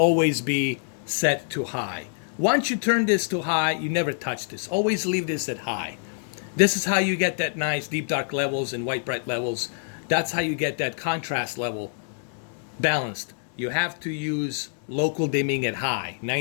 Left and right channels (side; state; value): right; silent; 61 dB below the other